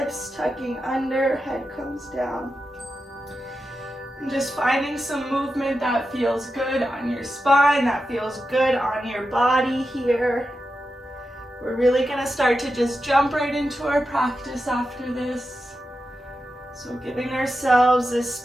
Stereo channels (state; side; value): normal; both; correlation 0.90